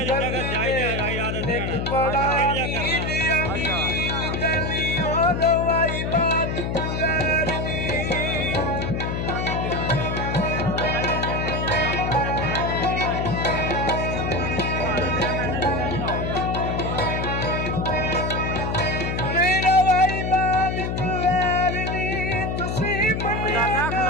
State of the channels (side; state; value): left; noise; hum, 1 dB below the sound